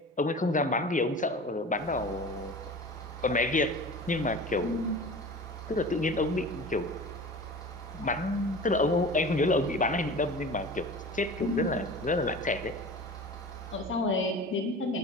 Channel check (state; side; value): normal; both; correlation 0.37